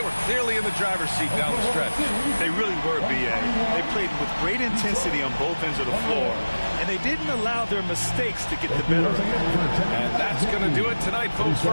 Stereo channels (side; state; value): both; inverted; correlation -1.00